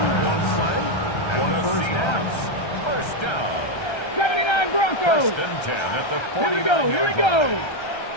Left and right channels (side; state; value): right; late; 1.3 ms